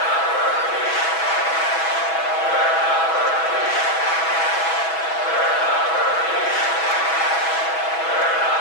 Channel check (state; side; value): late; right; 6.1 ms